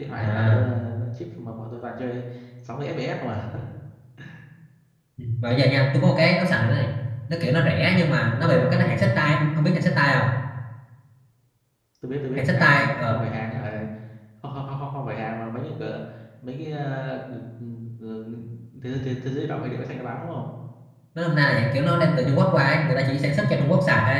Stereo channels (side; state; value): both; identical; correlation 1.00